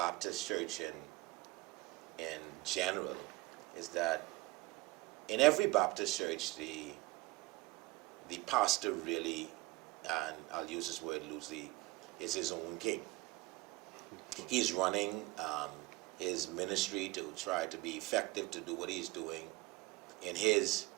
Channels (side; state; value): left; quieter; 22.0 dB